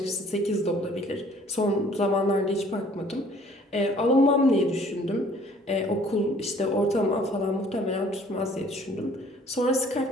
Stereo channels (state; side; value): normal; both; correlation 0.56